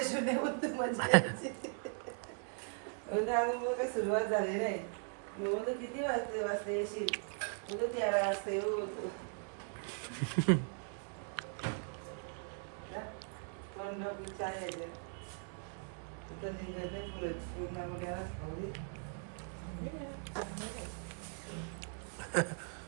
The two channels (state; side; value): silent; left; 52 dB below the other